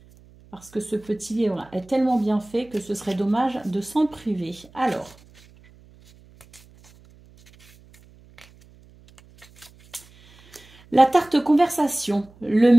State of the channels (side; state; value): right; noise; hum, 26 dB below the sound